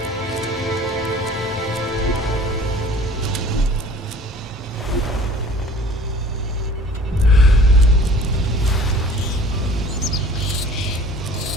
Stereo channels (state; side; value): normal; both; correlation 0.48